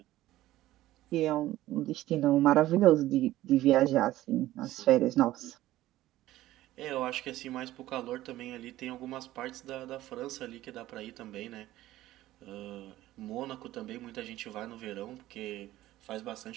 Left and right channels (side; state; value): left; quieter; 15.3 dB